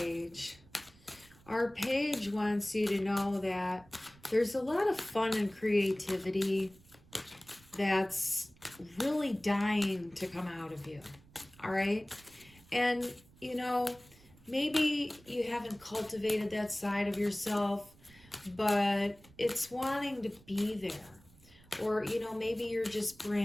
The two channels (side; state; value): right; noise; rumble, 26 dB below the sound